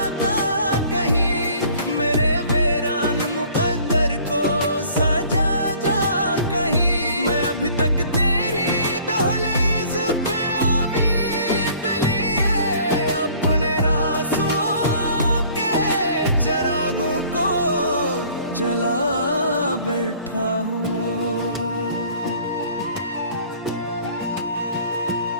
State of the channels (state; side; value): inverted; both; correlation -0.53